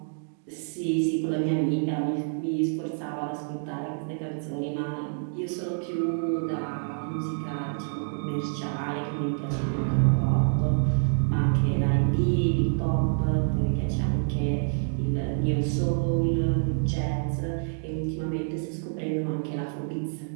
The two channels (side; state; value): left; silent; digital silence